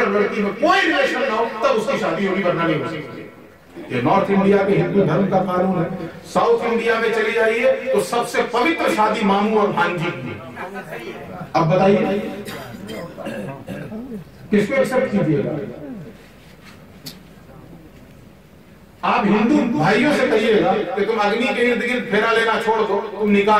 لڑکی میں کوئی ریلیشن نہ ہو تب اس کی شادی ہوگی، ورنہ نہیں ہو سکتی. یہ نارتھ انڈیا کے ہندو دھرم کا قانون ہے. ساؤتھ انڈیا میں چلی جائیے تو سب سے پوتر شادی ماموں اور بھانجی کی. اب بتائیے کس کو ایکسپٹ کیجیے گا؟ آپ ہندو بھائیوں سے کہیے گا کہ تم اگنی کے ارد گرد پھیرا لینا چھوڑ دو، تم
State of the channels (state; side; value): identical; both; correlation 1.00